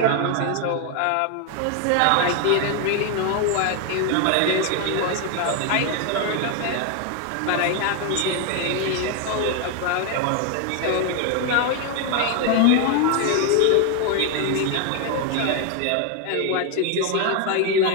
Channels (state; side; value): different; both; correlation 0.01